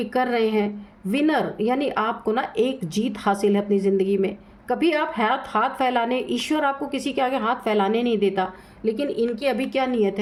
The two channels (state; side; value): identical; both; correlation 1.00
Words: कर रहे हैं, विनर यानी आपको ना एक जीत हासिल है अपनी ज़िंदगी में। कभी आप हाथ फैलाने, ईश्वर आपको किसी के आगे हाथ फैलाने नहीं देता, लेकिन इनकी अभी क्या नीयत